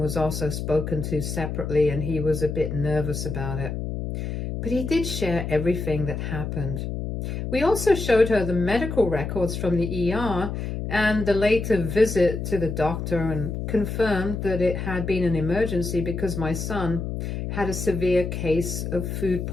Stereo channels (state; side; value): noise; left; hum, 4 dB below the sound